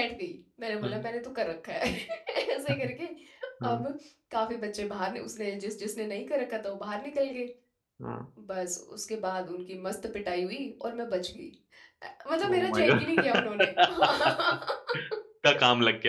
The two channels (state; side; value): identical; both; correlation 1.00